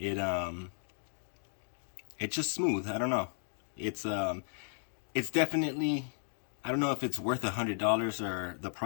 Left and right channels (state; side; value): silent; right; digital silence